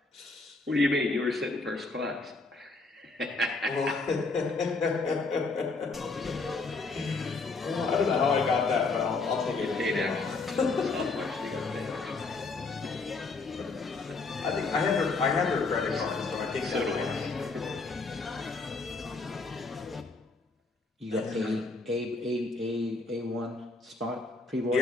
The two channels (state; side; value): quieter; right; 3.8 dB